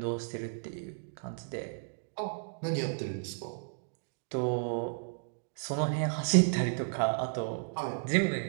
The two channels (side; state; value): left; silent; digital silence